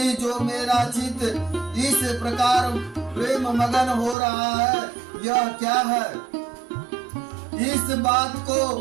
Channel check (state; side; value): drops out; left; at 4.2 s